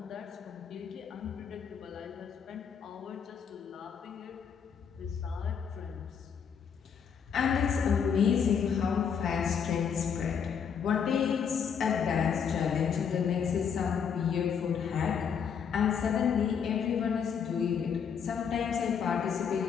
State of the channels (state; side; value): quieter; right; 7.1 dB